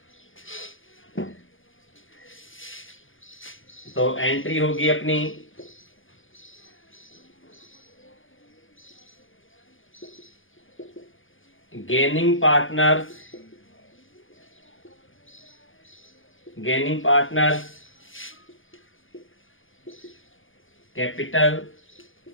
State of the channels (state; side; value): late; right; 0.58 ms